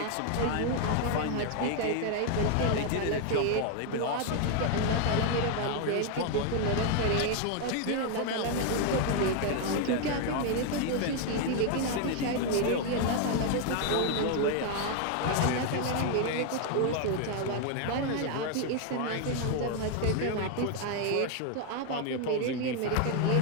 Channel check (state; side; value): different; both; correlation 0.01